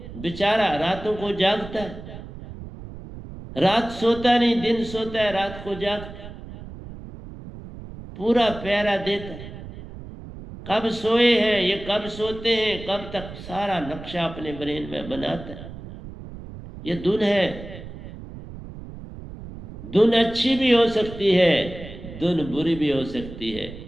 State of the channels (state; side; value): noise; right; rumble, 13 dB below the sound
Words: बेचारा रातों को जागता है, रात सोता नहीं, दिन सोता है, रात को जागता है, पूरा पहरा देता है। कब सोए हैं, ये कब सोते हैं, कब तक, सारा नक्शा अपने ब्रेन में बनाता है। ये धुन है। धुन अच्छी भी हो सकती है, धुन बुरी भी हो सकती है,